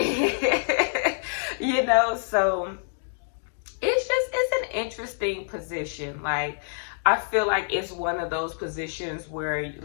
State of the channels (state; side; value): silent; right; digital silence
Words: know, so it's an interesting position. Like, I feel like it's one of those positions where,